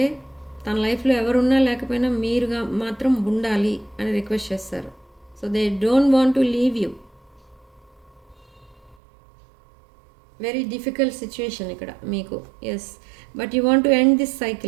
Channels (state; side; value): drops out; left; at 9.0 s